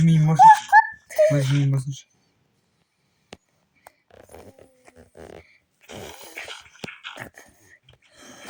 miyim boş. O'z miyim boş.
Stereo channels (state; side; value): identical; both; correlation 1.00